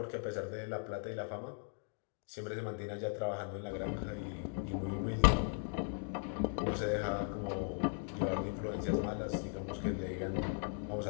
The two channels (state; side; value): silent; right; 52 dB below the other